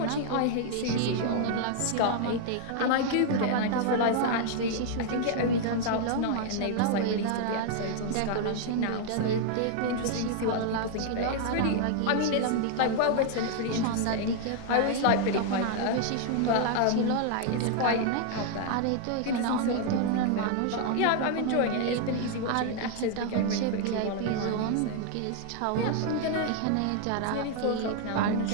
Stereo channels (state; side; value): different; both; correlation 0.00